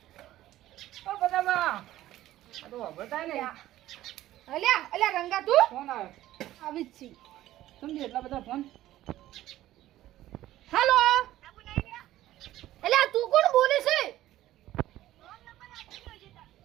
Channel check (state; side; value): quieter; left; 14.5 dB